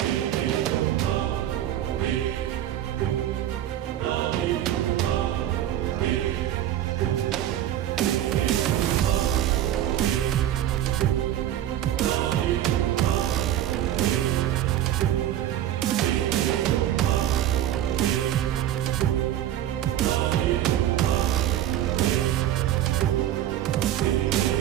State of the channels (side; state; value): left; quieter; 12.0 dB